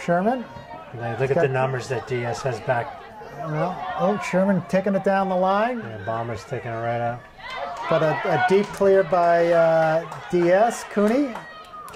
Sherman. Look at the numbers that DS has back. Well, Sherman taking it down the line. Yeah, Bomber's taking it right out. But a deep clear by DS. Cooney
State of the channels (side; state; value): both; identical; correlation 1.00